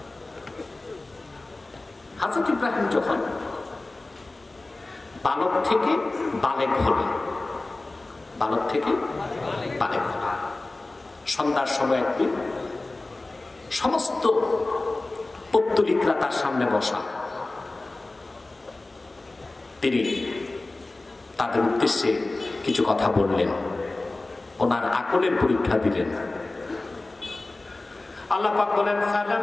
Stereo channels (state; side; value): quieter; right; 3.0 dB